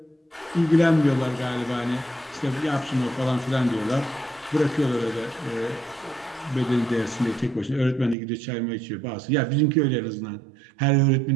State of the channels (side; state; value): left; drops out; at 8.2 s